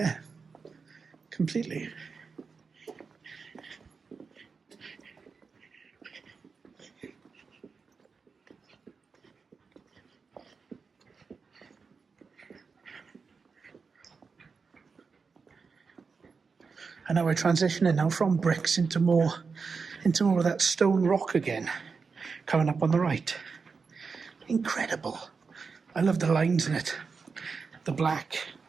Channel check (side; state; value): left; quieter; 5.0 dB